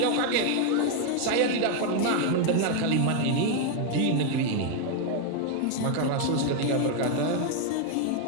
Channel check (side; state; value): both; different; correlation 0.01